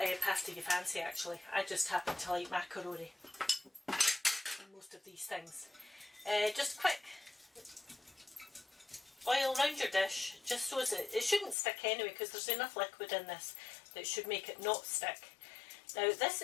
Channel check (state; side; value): drops out; right; at 11.6 s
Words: pasta you fancy actually. I just happen to like macaroni in most of these things. Just quick oil around your dish, just so it shouldn't stick anyway, because there's enough liquid in this that should make it not stick. Now this